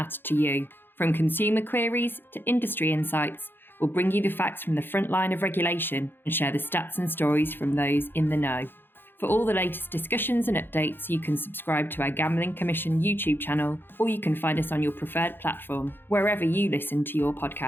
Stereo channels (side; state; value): right; late; 0.10 ms